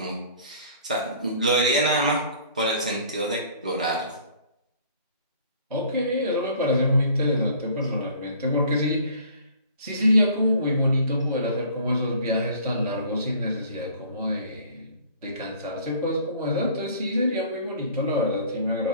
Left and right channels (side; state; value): both; inverted; correlation -0.52